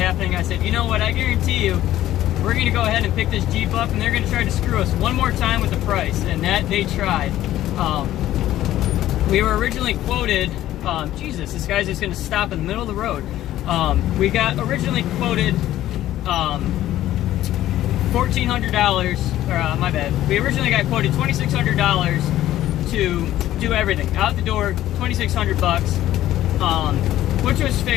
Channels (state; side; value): quieter; right; 13.7 dB